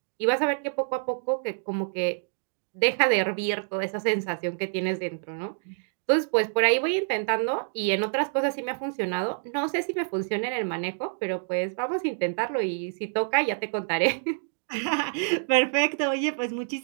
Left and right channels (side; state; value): left; silent; digital silence